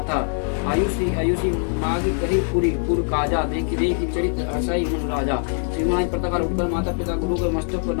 आयुषी मागी कही पुर काजा, देखी चरित्र असई मन राजा। श्रीमान प्रातःकाल उठकर माता पिता गुरु के मस्तक को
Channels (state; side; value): silent; right; 64 dB below the other